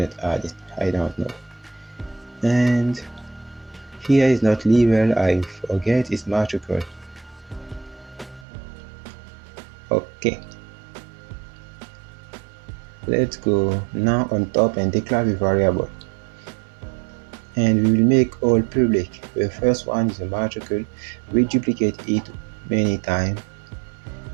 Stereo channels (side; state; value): left; drops out; at 8.5 s